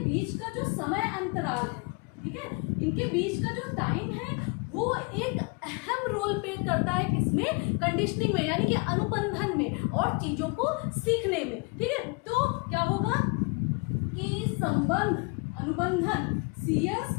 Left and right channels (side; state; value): right; quieter; 31.0 dB